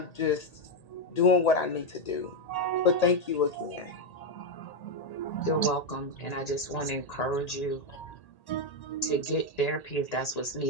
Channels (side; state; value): right; late; 1.8 ms